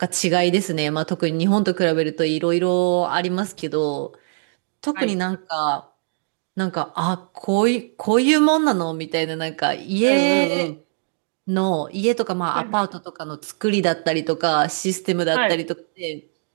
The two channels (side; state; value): left; silent; digital silence